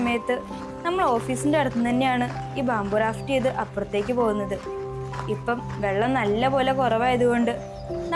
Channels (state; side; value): identical; both; correlation 1.00